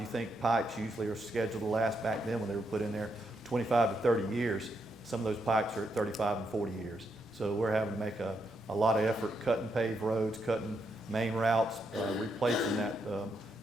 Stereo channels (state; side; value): normal; both; correlation 0.80